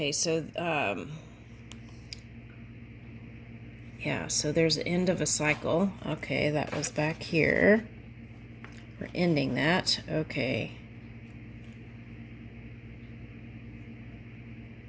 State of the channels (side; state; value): both; identical; correlation 1.00